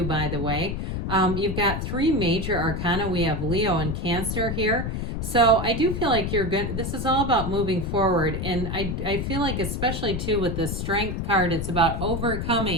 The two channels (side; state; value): left; noise; rumble, 3 dB below the sound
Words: by the way. You've got three major arcana. We have Leo and Cancer here. So I do feel like you're good. This is all about moving forward. And I feel like especially too with the Strength card, it's about